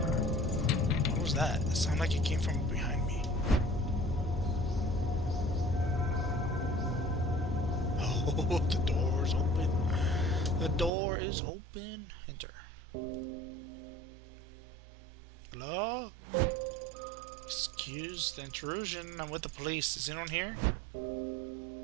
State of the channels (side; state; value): left; drops out; at 10.9 s